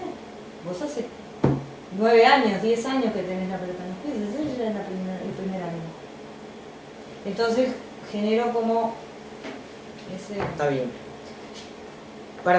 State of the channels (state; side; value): identical; both; correlation 1.00